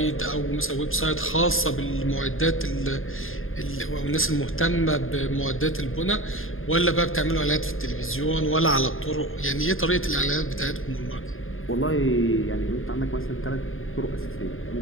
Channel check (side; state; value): right; late; 0.60 ms